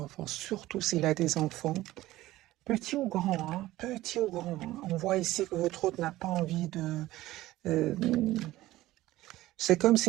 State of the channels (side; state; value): left; quieter; 16.5 dB